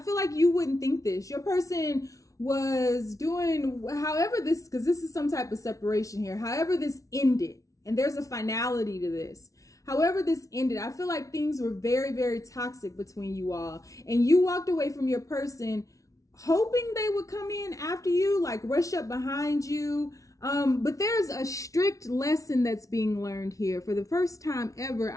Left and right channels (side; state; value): right; late; 0.16 ms